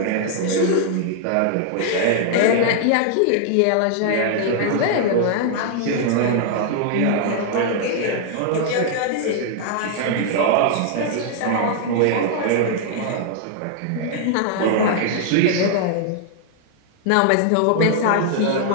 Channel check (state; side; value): different; both; correlation 0.00